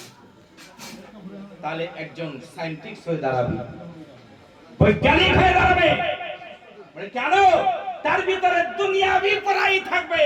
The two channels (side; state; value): both; identical; correlation 1.00